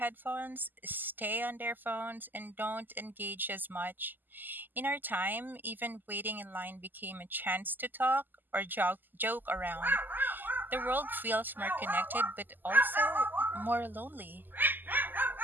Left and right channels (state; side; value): late; left; 0.089 ms